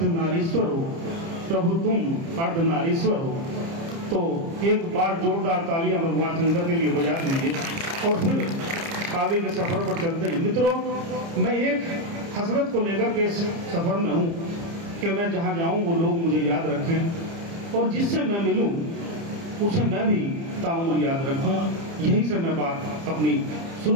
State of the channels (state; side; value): late; left; 30 ms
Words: हो। प्रभु तुम अर्धनारीश्वर हो। तो एक बार जोरदार तालियां भगवान शंकर के लिए बजा दीजिए और फिर काव्य के सफर पर चलते हैं। मित्रों, मैं एक हसरत को लेकर के इस सफर में हूं कि मैं जहां जाऊं वो लोग मुझे याद रखें और जिससे मैं मिलूं उसे मैं भी ताउम्र याद रखूं। यहीं से मैं बात अपनी